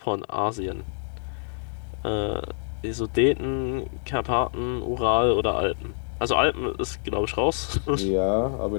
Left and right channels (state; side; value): silent; right; 61 dB below the other